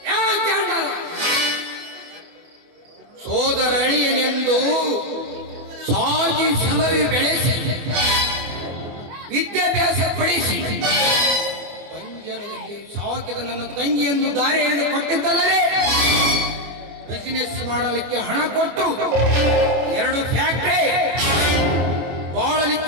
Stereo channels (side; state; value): left; late; 24 ms